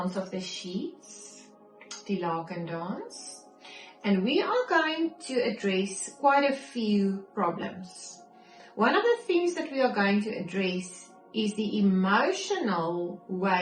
of the sheets, die laken dance. And we are going to address quite a few problems. One of the things that we are going to address is the emotional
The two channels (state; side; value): identical; both; correlation 1.00